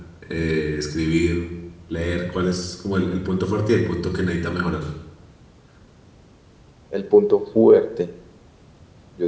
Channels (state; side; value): identical; both; correlation 1.00